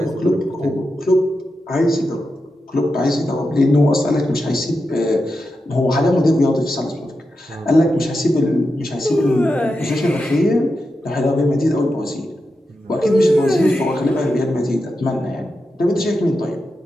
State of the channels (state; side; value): normal; both; correlation 0.89